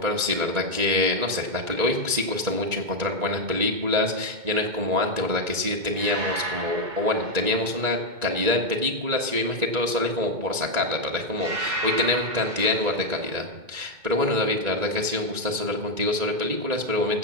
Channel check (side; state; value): left; late; 1.9 ms